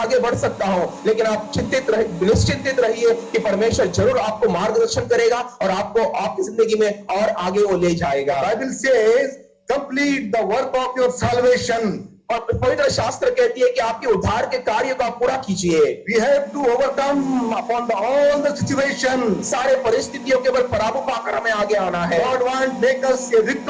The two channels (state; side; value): identical; both; correlation 1.00